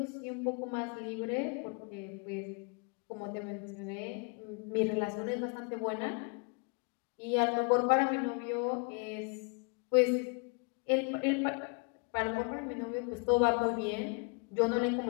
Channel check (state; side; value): quieter; right; 34.2 dB